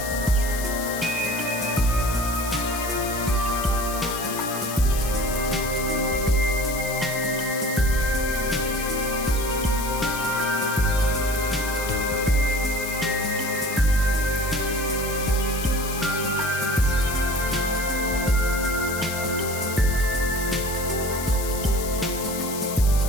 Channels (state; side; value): noise; left; hiss, 8 dB below the sound